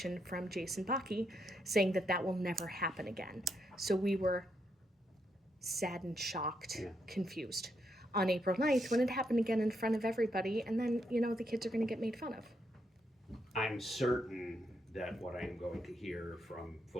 from Jason Bakke saying that that will never happen again. So we were saddened, shocked, confused on April 9th when it happened again in front of everybody. And then, the kids are going to get made fun of. I'm certain that what I'm going to hear from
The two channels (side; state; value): both; normal; correlation 0.79